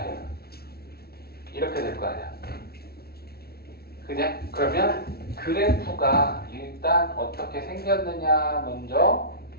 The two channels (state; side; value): late; right; 0.45 ms